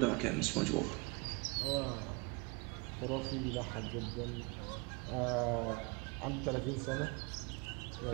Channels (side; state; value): left; quieter; 28.8 dB